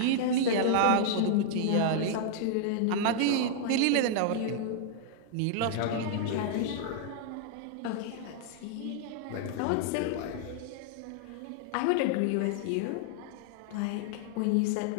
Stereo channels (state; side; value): different; both; correlation -0.01